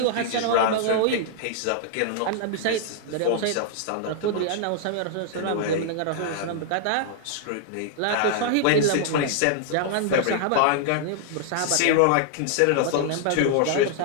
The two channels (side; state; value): both; different; correlation -0.01